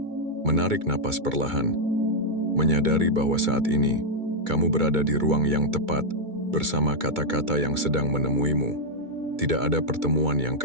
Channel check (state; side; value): late; left; 2.2 ms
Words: menarik napas perlahan, menyadari bahwa saat ini kamu berada di ruang yang tepat bersama kata-kata yang sedang menemuimu. Tidak ada pertemuan yang